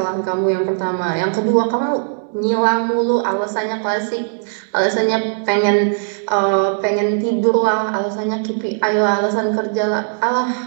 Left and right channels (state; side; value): silent; left; digital silence